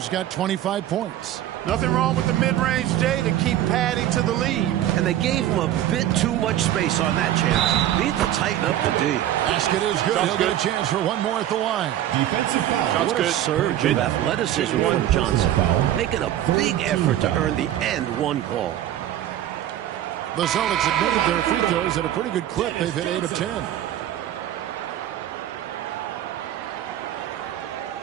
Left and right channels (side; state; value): left; quieter; 12.3 dB